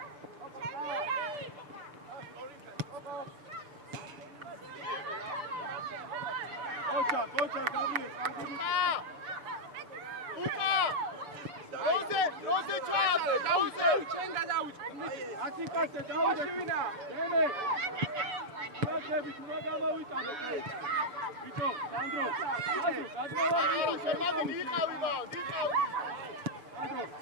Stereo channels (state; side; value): late; left; 6.8 ms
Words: Kocha, Gabriel. Rose Chave, Chenga dauch. Atikase dauch vina. Deme. Rosები თუ რა გამოვიტანო კი. ბიჭო, სანდრო. შემადი იყავი და, იყავი. სანდრო,